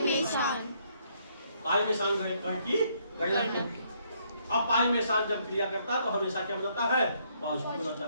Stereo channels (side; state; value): both; inverted; correlation -0.70